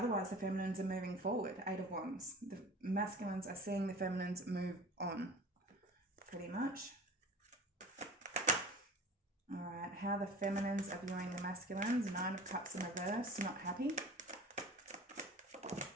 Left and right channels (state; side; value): normal; both; correlation 0.40